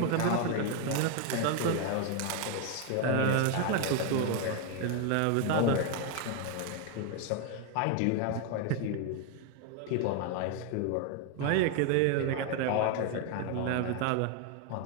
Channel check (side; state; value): both; different; correlation 0.01